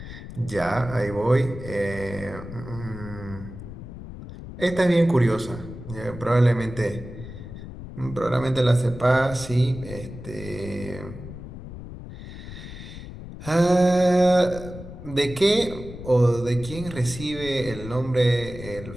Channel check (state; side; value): noise; left; rumble, 12 dB below the sound